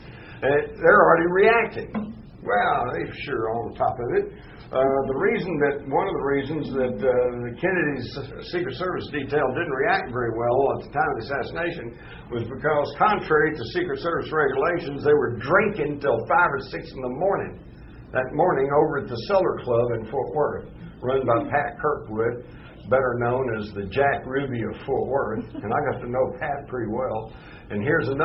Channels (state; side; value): identical; both; correlation 1.00